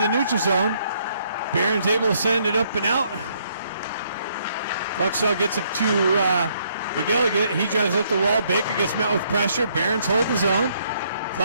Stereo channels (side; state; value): both; inverted; correlation -0.69